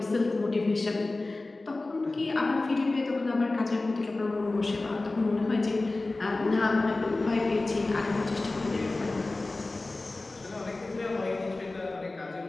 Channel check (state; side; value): quieter; right; 3.1 dB